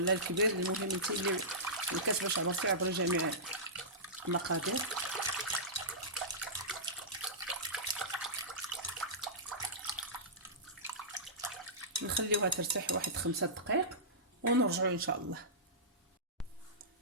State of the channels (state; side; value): normal; both; correlation -0.18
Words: الكبير، المهم انت اللي الكاس باش عبرتي عبري جميع المقادير. نخليوها ترتاح واحد 5 دقائق ونرجعوا ان شاء الله.